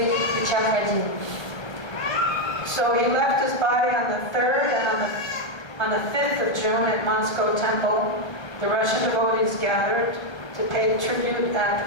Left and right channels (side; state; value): right; late; 1.2 ms